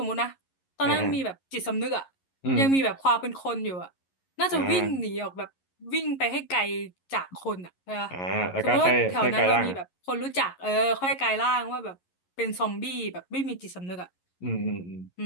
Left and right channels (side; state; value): right; late; 11 ms